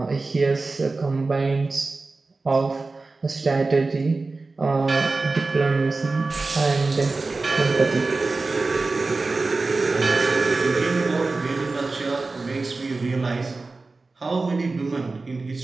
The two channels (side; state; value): left; quieter; 3.6 dB